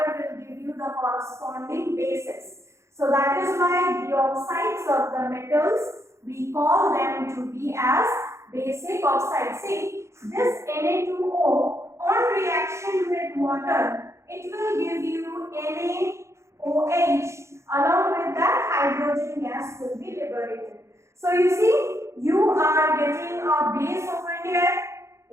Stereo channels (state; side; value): late; left; 0.14 ms